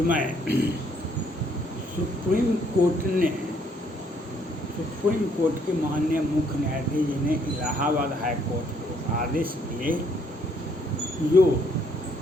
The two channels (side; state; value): both; normal; correlation 0.67